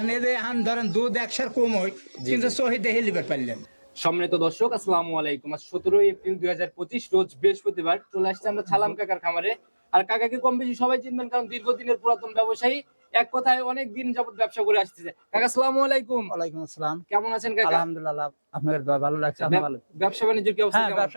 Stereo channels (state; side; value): inverted; both; correlation -1.00